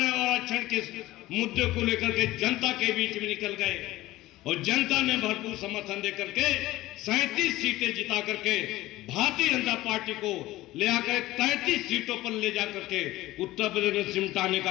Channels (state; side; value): quieter; right; 17.2 dB